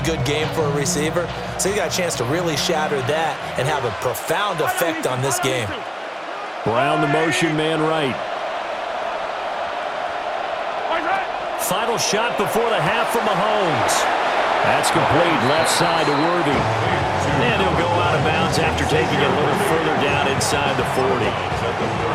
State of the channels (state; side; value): identical; both; correlation 1.00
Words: good game for a receiver? So he got a chance to really shatter that and have a profound effect on this game. Brown the motion man right. Final shot before the half from Mahomes. That's complete, left side to Worthy. And he'll go out of bounds after taking it a little further down inside the 40. At the